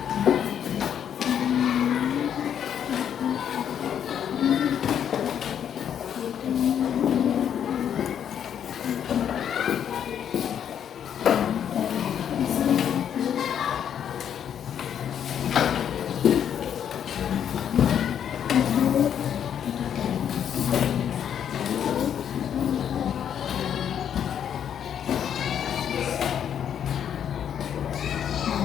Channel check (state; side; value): quieter; right; 9.0 dB